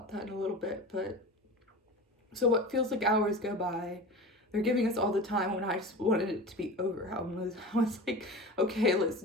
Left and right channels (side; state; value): both; normal; correlation 0.33